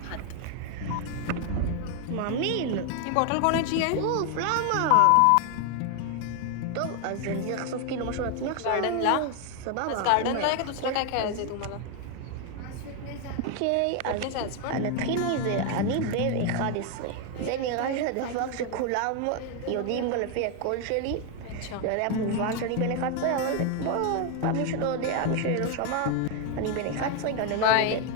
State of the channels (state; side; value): different; both; correlation 0.01